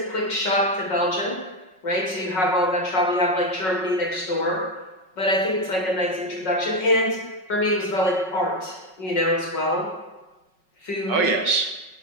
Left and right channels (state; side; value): late; right; 5.4 ms